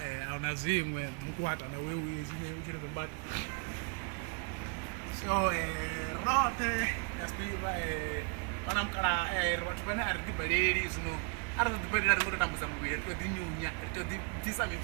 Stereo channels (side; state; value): left; quieter; 34.3 dB